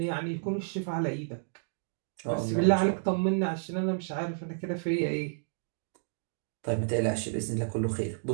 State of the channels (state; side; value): silent; left; digital silence